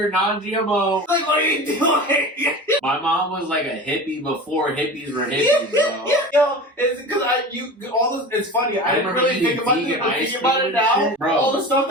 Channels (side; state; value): both; normal; correlation 0.32